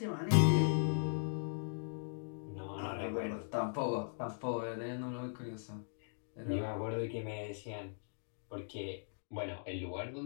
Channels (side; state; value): right; silent; digital silence